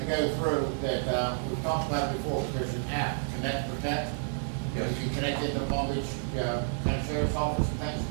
go through that, we've talked about it before, there's an app, Connect Protect. Yes. You can connect it to the Palm Beach County Sheriff's Office and things.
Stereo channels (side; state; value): left; silent; digital silence